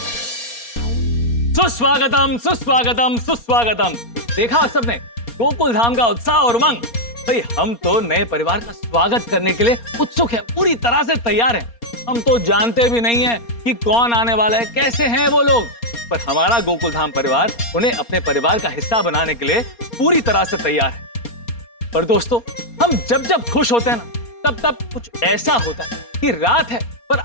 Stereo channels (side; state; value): right; late; 4.3 ms